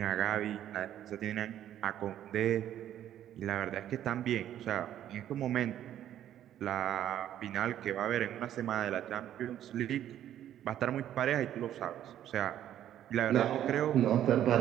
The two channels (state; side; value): quieter; left; 11.3 dB